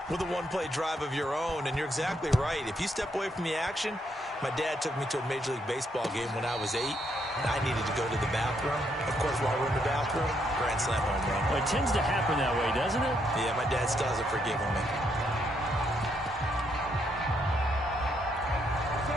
with a one-play drive of your own. And you're exactly right. If you step away from the action, my dad took me to a Major League Baseball game when I was 8, and I needed to go to the bathroom. Of course, while we're in the bathroom, grand slam home run. Well, it tends to happen that way, doesn't it? Yeah, my dad still hasn't forgiven me.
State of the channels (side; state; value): both; normal; correlation 0.75